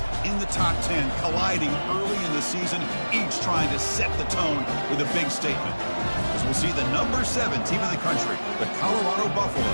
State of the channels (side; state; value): both; inverted; correlation -1.00